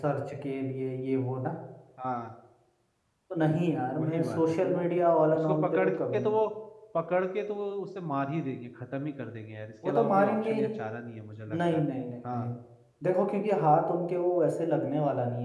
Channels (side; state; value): both; identical; correlation 1.00